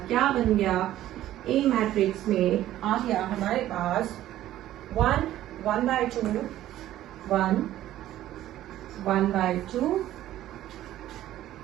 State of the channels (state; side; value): quieter; left; 13.5 dB